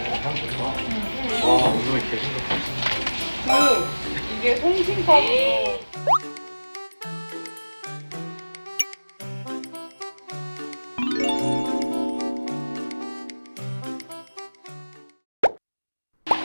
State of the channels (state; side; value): inverted; both; correlation -1.00